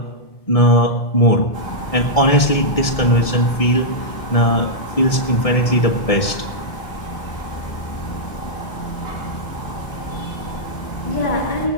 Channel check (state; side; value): late; right; 1.6 ms